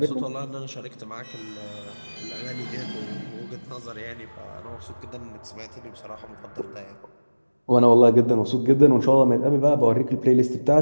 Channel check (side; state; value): both; inverted; correlation -1.00